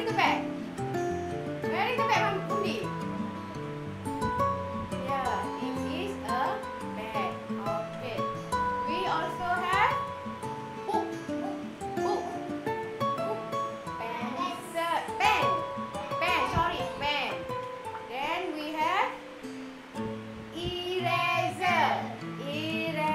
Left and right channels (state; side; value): identical; both; correlation 1.00